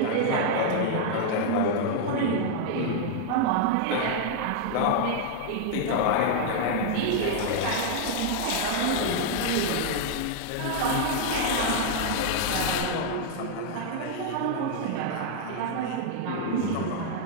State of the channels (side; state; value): both; different; correlation 0.00